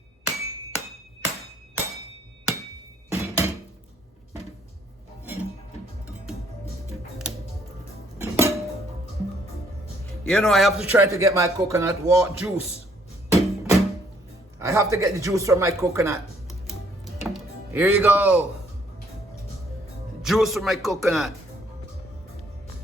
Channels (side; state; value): both; normal; correlation 0.66